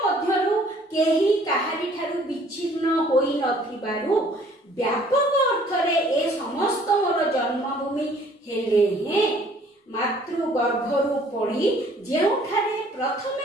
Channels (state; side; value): normal; both; correlation 0.57